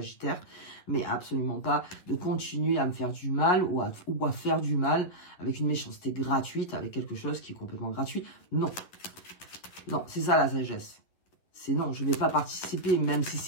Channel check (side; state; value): right; late; 11 ms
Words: mais absolument pas de continuer à me faire du mal ou à faire du mal avec une méchanceté gratuite, avec quelque chose qui est complètement gratuit. Non. Non, c'est ça la sagesse. C'est non, je ne vais pas participer, même si